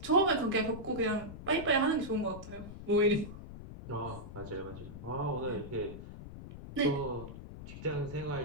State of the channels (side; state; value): left; noise; rumble, 12 dB below the sound